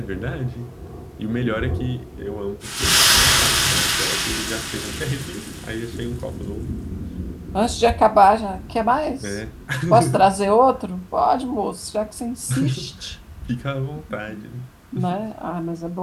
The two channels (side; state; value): both; identical; correlation 1.00